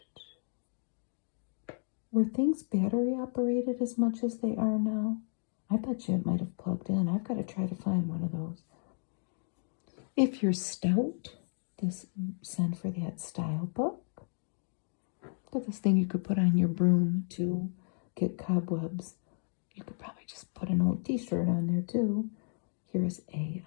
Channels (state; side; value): silent; right; 56 dB below the other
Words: Were things battery operated as much as they are now? I bet you it might have plugged in. I've got to try to find one of those. If you're stout, send for that style book. Look at this thing you could put on your broom to get cobwebs. You could probably just put an old t-shirt on there too. Here's